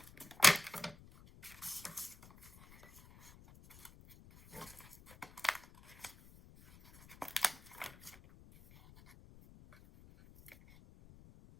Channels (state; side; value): noise; left; rumble, 21 dB below the sound